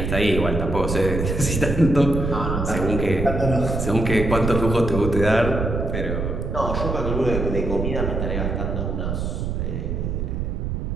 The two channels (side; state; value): right; noise; rumble, 2 dB below the sound